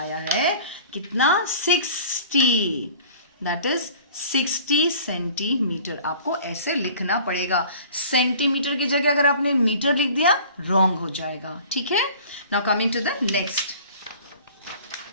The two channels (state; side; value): inverted; both; correlation -0.46